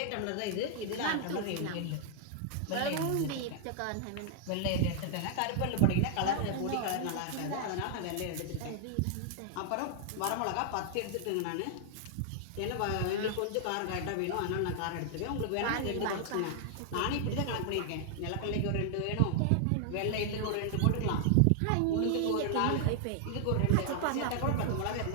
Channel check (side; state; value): both; different; correlation -0.01